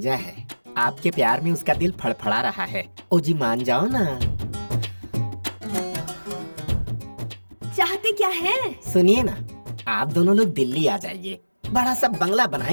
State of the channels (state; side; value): inverted; both; correlation -1.00